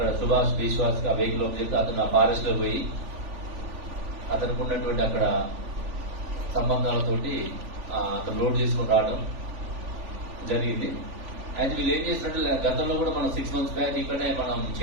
సుభాష్ విశ్వాస్ ఆ వెహికల్ అని చెప్తే అతను ఆ ఫారెస్ట్ లో పోయి అతనికి ఉన్నటువంటి అక్కడ సంబంధాలతోటి అతను లోడ్ చేసుకుని రావడం జరిగింది. అయితే వీళ్ళు ఏం చేసినట్టు గతంలో కూడా మనం 6 months బ్యాక్ ఇక్కడనే మనం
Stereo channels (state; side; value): late; left; 3.5 ms